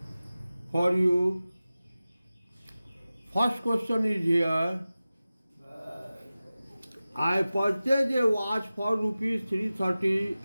for you. First question is here. I purchased a watch for rupees 330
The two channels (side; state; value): both; inverted; correlation -0.96